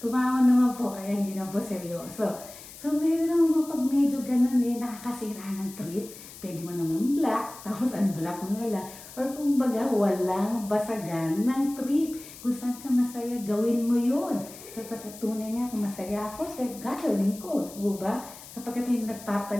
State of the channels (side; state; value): left; noise; hiss, 16 dB below the sound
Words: naman po, kaya hindi na po seryoso. So, ngayon naman pag medyo ganun nakakasira ng trip, pwede mo naman black, tapos unblock mo na lang. Or kung baga, walang basagan ng trip. Kung saan ka masaya, gawin mo yun. Sapagkat tunay nga, kung masaya ako, gagawin ko. Diba? Sapagkat yung